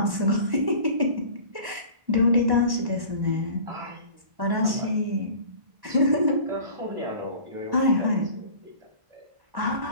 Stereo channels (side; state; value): left; late; 1.1 ms